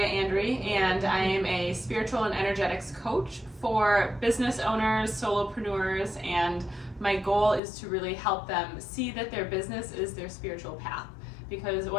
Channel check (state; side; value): drops out; right; at 7.6 s